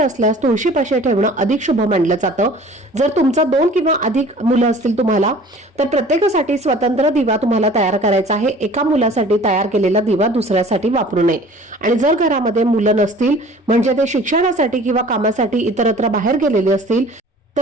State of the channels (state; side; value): normal; both; correlation 0.47